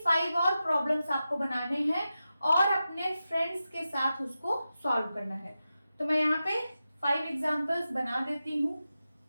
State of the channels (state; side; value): inverted; both; correlation -0.92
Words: 5 और प्रॉब्लम्स आपको बनाने हैं और अपने फ्रेंड्स के साथ उसको सॉल्व करना है। तो मैं यहाँ पे 5 एग्जाम्पल्स बना देती हूँ।